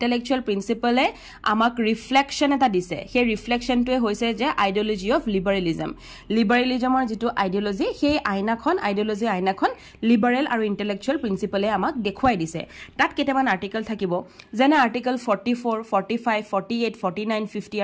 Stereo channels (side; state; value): both; identical; correlation 1.00